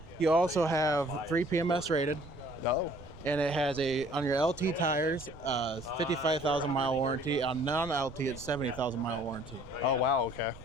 You also have 3 PMS rated. Oh. And it has on your LT tires, 55,000 mile warranty. On non-LT, it's 70,000 mile warranty. Oh, wow, okay.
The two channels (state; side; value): noise; right; rumble, 18 dB below the sound